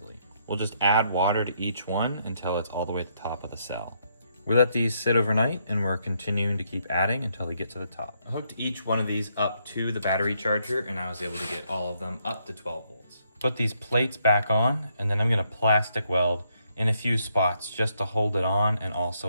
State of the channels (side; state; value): both; inverted; correlation -0.74